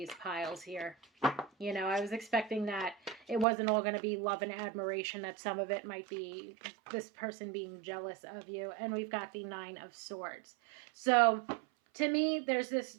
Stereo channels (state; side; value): drops out; left; at 3.5 s